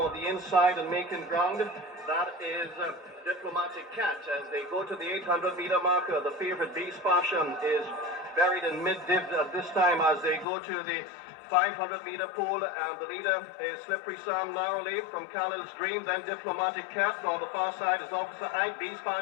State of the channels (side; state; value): right; drops out; at 10.5 s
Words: the inside and making ground. That is Diplomatic Cat. As they go to the 800 meter marker, the favorite Beast Passion is buried in mid-div at this time as they go to the 500 meter pool, and the leader is Slippery Sam narrowly from Khaled's Dream, then Diplomatic Cat. On the far side is Officer Ike. Beast